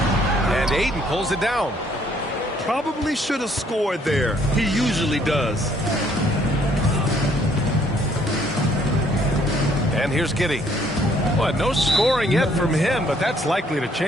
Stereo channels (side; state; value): both; normal; correlation 0.64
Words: And Ayton pulls it down. Probably should have scored there. He usually does. And here's Giddey. Well, no scoring yet from him, but that's likely to